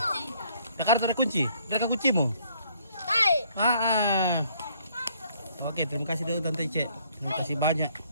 Jakarta ada kunci? Ada kuncimu? Oke, terima kasih dulu Tante Cek. Terima kasih banyak.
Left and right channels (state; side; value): inverted; both; correlation -0.64